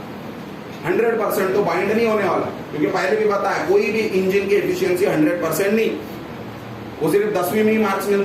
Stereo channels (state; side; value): identical; both; correlation 1.00